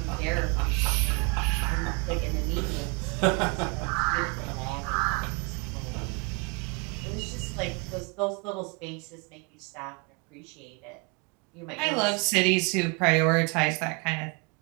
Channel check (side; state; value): left; quieter; 32.4 dB